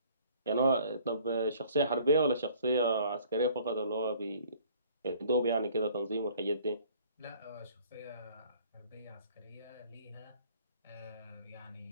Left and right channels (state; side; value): inverted; both; correlation -0.56